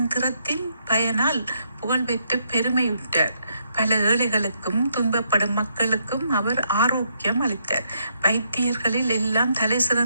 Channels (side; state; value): both; inverted; correlation -0.76